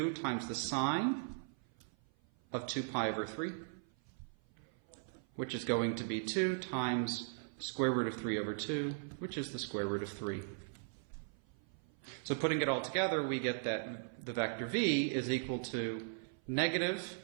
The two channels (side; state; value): left; silent; 52 dB below the other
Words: times the sine of 2 pi over 3, which is going to be 2 times square root of 3 over 2, which is the square root of 3. So putting it all together, we get that the vector v is equal to negative